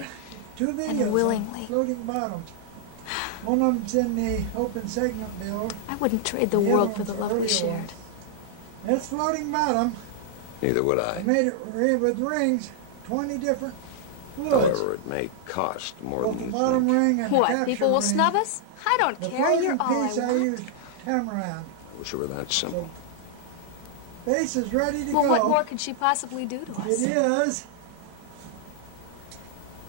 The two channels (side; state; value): both; different; correlation -0.01